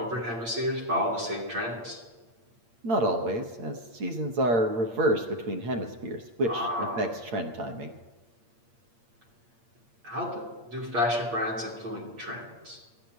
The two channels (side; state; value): left; late; 8.7 ms